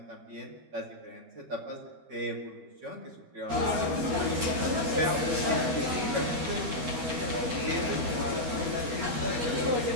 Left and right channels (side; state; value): left; late; 12 ms